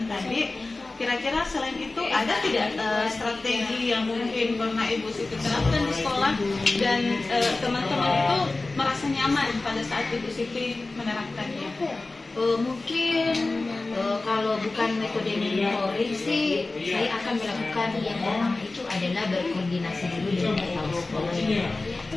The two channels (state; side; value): quieter; right; 3.3 dB